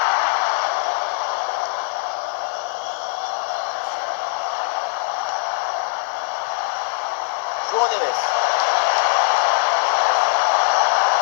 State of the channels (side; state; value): right; silent; digital silence